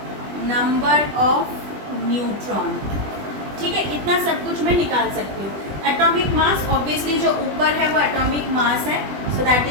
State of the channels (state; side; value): late; left; 20 ms